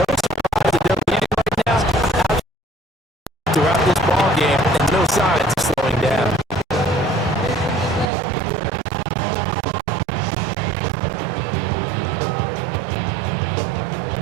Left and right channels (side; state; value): left; drops out; at 8.1 s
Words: surprise that they're leading right now throughout this ball game, and no signs of slowing down.